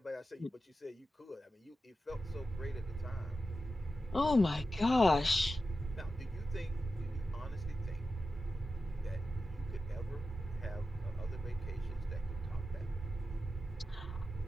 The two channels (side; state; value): both; normal; correlation 0.91